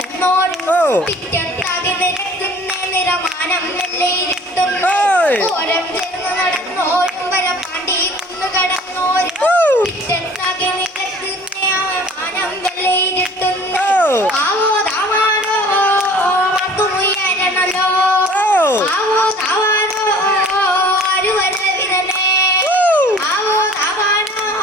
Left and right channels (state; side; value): normal; both; correlation 0.49